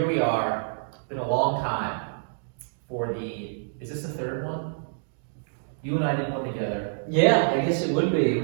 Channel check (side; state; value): left; silent; digital silence